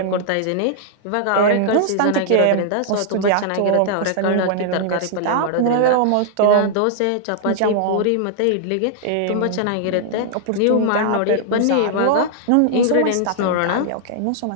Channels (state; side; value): different; both; correlation -0.01